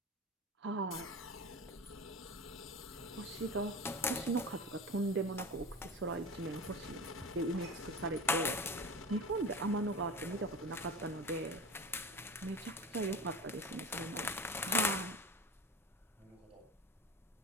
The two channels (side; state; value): both; normal; correlation 0.31